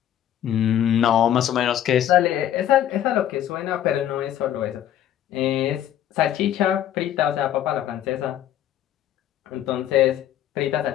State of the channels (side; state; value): right; quieter; 11.1 dB